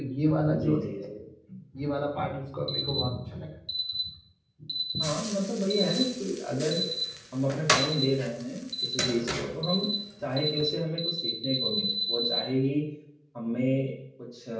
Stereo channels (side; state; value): both; identical; correlation 1.00